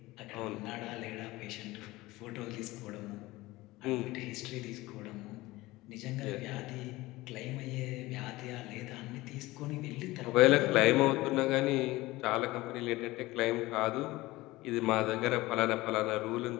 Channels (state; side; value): quieter; right; 19.4 dB